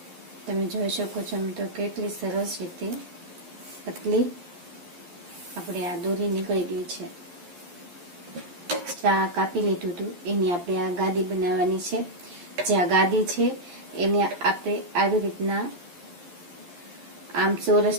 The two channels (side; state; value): left; late; 11 ms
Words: તમે જોઈ શકો છો તો કેટલી સરસ રીતે પતલી આપણે આ દોરી નીકળી ગઈ છે। આ કાપી લીધું હતું એની આપણે આ ગાદી બનાવવાની છે। જે આ ગાદી છે એને આપણે આવી રીતના આમ